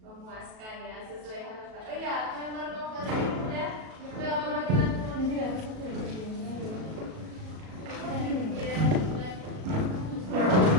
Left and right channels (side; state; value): left; late; 37 ms